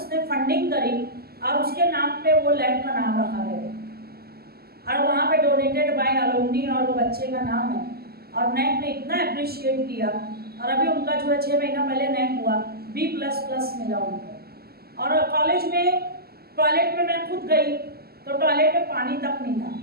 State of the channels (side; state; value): left; late; 0.45 ms